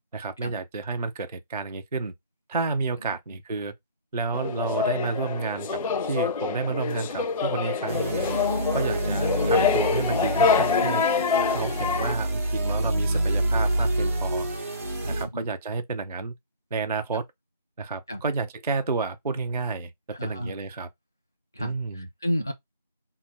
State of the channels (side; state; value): both; inverted; correlation -0.39